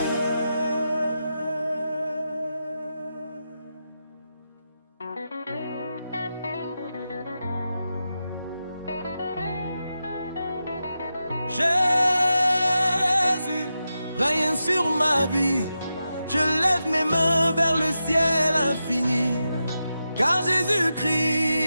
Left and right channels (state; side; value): inverted; both; correlation -0.89